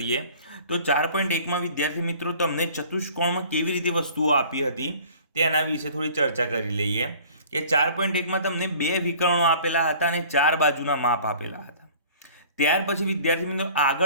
તો 4.1માં વિદ્યાર્થી મિત્રો તમને ચતુષ્કોણમાં કેવી રીતે વસ્તુઓ આપી હતી તેના વિશે થોડી ચર્ચા કરી લઈએ. કે 4.1માં તમને 2 વિકર્ણો આપેલા હતા અને 4 બાજુના માપ આપેલા હતા. ત્યાર પછી વિદ્યાર્થી મિત્રો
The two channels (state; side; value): inverted; both; correlation -0.48